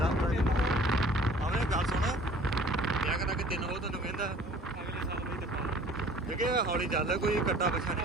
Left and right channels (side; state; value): both; normal; correlation 0.50